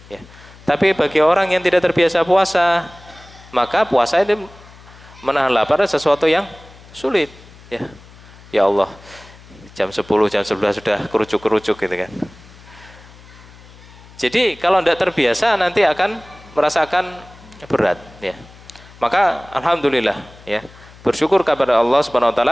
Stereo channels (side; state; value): left; noise; hum, 22 dB below the sound